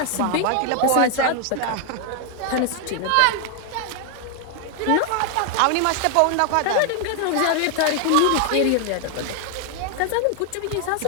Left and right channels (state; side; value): different; both; correlation 0.00